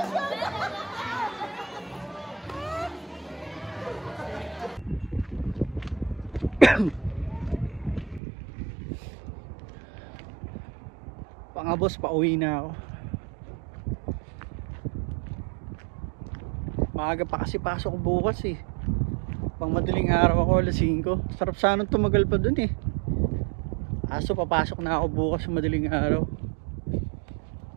Mga boss, pauwi na ako. Maaga pa kasi pasok ko bukas eh. Pang madaling araw ako, alas 5. Sarap sanang tumagal pa dun eh. Aso papasok na ako bukas sa madaling araw.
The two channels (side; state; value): left; drops out; at 8.2 s